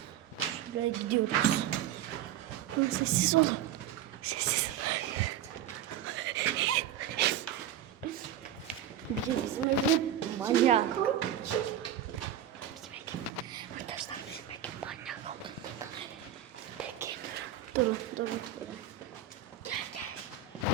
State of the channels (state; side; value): quieter; left; 10.3 dB